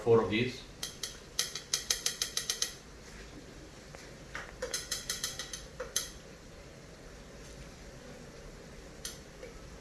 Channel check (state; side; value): identical; both; correlation 1.00